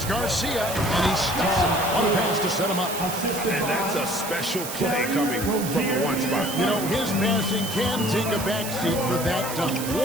Garcia. And he stuffs him. What a pass to set him up. And that's a special play coming from the 1 spot. You know, his passing can take a backseat for that dunk.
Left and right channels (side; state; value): right; noise; hiss, 8 dB below the sound